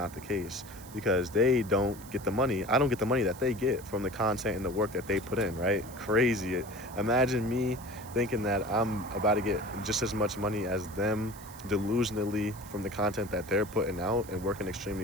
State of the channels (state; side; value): noise; right; hiss, 18 dB below the sound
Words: the case, because they don't get the money. I don't get the money that they get from the content and the work that they put in, right? Crazy. Imagine me thinking that I'm about to get just as much money as them delusionally from the content that they're putting out and working